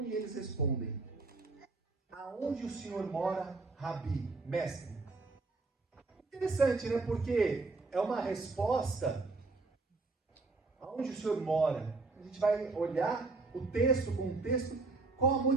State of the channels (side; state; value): left; quieter; 3.7 dB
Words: E eles respondem, aonde o Senhor mora, Rabi, mestre? Interessante, né? Porque é uma resposta, aonde o Senhor mora? A gente vai olhar o texto com o texto, qual a